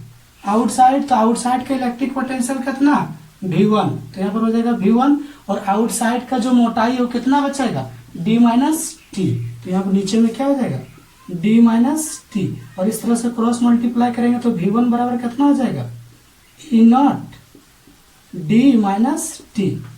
तो आउटसाइड का इलेक्ट्रिक पोटेंशियल कितना, V1। तो यहाँ पर हो जाएगा V1, और आउटसाइड का जो मोटाई है वो कितना बचेगा, D माइनस टी। तो यहाँ पर नीचे में क्या हो जाएगा, D माइनस टी। और इस तरह से क्रॉस मल्टीप्लाई करेंगे तो V1 बराबर कितना हो जाएगा, E naught D minus T.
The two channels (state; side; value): identical; both; correlation 1.00